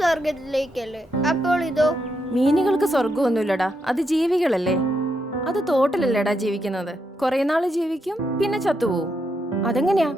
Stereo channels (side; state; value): both; normal; correlation 0.81